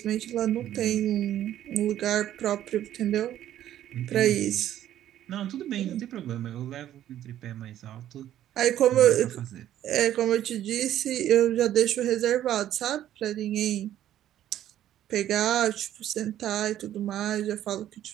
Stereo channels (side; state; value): left; quieter; 12.0 dB